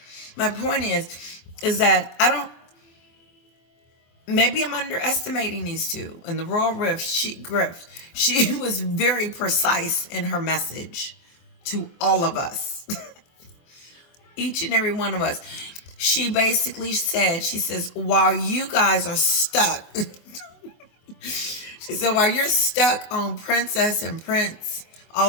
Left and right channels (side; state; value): right; late; 24 ms